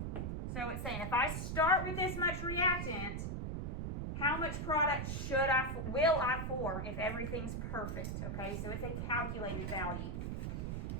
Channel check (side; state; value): right; noise; rumble, 2 dB below the sound